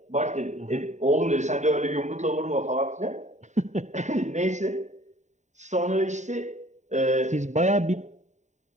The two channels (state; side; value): late; left; 0.34 ms